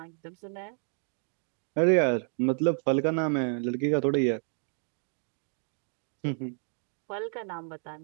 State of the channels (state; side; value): silent; left; 57 dB below the other